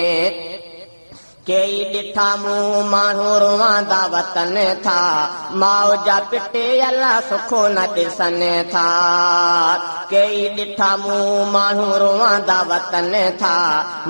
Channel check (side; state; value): both; inverted; correlation -1.00